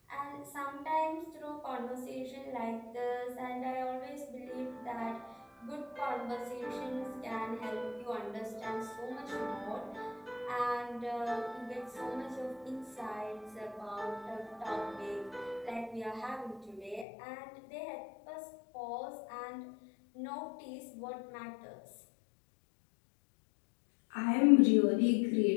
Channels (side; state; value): right; drops out; at 17.1 s